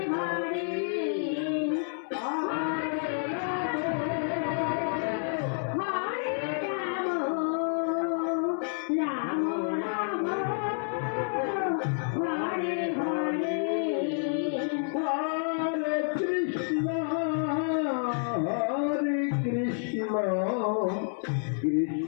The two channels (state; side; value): silent; right; 58 dB below the other